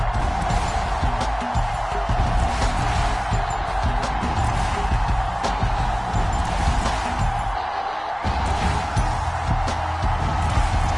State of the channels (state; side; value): identical; both; correlation 1.00